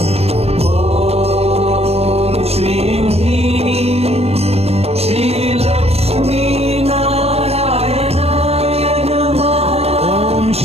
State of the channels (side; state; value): left; late; 0.30 ms